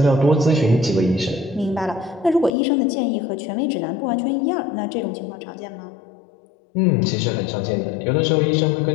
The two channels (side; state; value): right; drops out; at 2.5 s